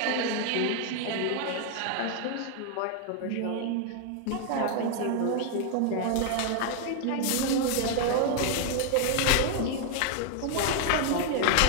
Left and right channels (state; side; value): different; both; correlation 0.00